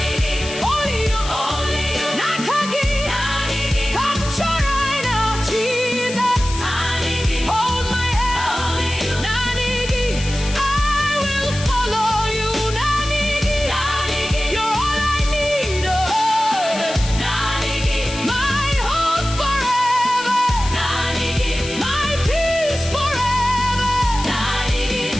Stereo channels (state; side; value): noise; left; hiss, 10 dB below the sound